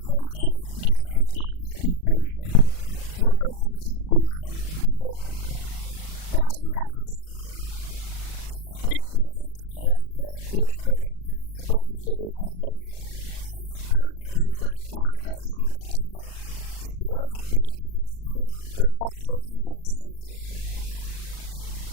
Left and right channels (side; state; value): right; late; 39 ms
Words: politique d'exploitation qui souffre, me dis bien, qui souffre de conflits d'intérêts. Il n'y a pas une exploitation dans l'intérêt général. Parce qu'il y a un traité qu'ils ont tapé signé, il n'y a pas de nature partenariale.